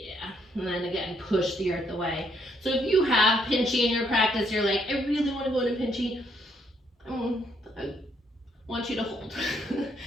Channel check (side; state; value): both; normal; correlation 0.72